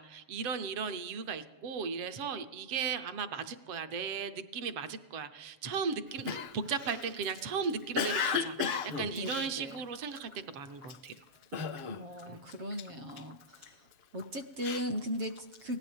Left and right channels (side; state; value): left; late; 7.4 ms